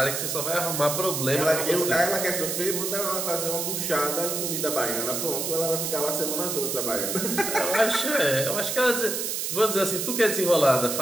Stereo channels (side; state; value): right; noise; hiss, 2 dB below the sound